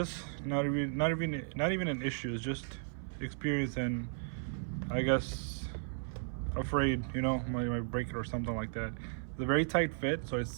Not even an issue. It's just experience and I guess afraid, you know, might break it or something like that. It's a very tight fit, so it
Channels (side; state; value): left; silent; 54 dB below the other